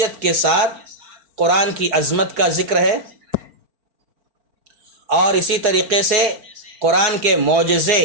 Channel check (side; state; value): left; late; 4.7 ms